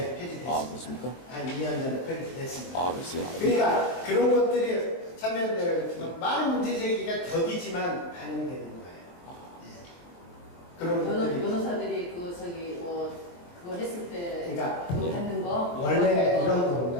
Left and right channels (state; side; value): late; right; 23 ms